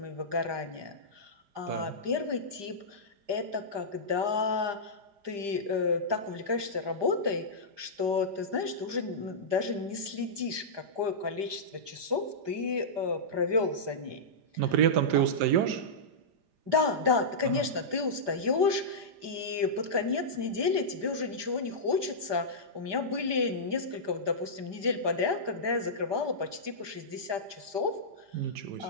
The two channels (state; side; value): late; left; 5.0 ms